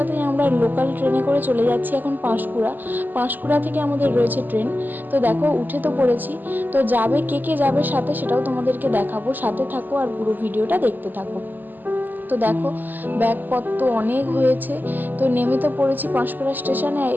আমরা লোকাল ট্রেনে করে চলে যাচ্ছি এখন পাঁশকুড়া থেকে আমাদের রয়েছে ট্রেন। তো দেখো উঠে তো পড়েছি। তো যাবে কে কে যাবে সাথে সেটাও তোমাদেরকে দেখাবো, সাথে থাকো আর পুরো ভিডিওটা দেখতে থাকো। তো দেখো ব্যাগপত্র অনেক হয়েছে। তো নেমে তো পড়েছি পাঁশকুড়া স্টেশনে।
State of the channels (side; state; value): left; late; 0.087 ms